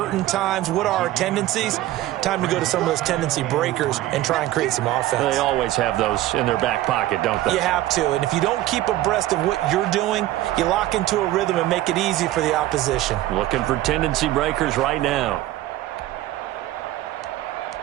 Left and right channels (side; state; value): left; quieter; 15.1 dB